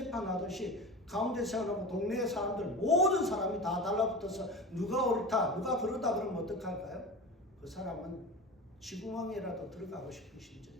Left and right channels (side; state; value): both; normal; correlation 0.31